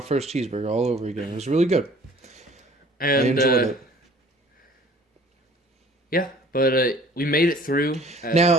first cheeseburger all over again. It was really good. And I enjoyed it. Yeah, but we made it through.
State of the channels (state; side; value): normal; both; correlation 0.51